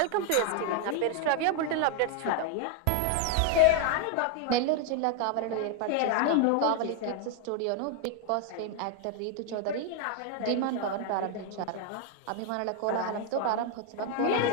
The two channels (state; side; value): different; both; correlation 0.00